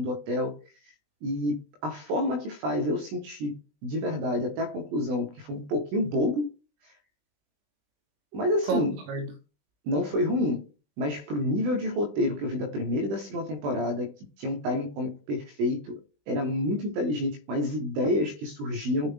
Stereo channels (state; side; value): late; left; 20 ms